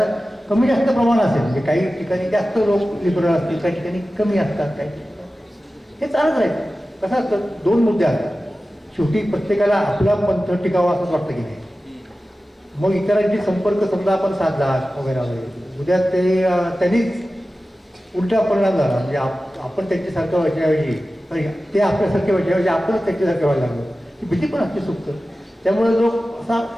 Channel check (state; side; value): normal; both; correlation 0.95